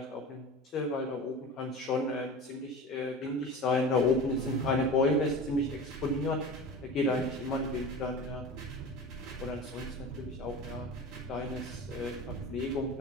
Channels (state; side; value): normal; both; correlation 0.32